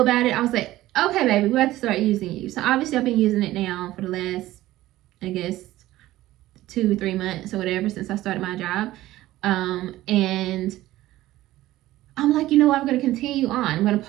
it, I was like, okay, baby, we have to start using you. So obviously I've been using it now for the last, I guess, 2 or 3 months or whatever since I started my job. And I'm like, you know what, I'm going to continue on. I'm going to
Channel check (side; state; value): left; quieter; 15.9 dB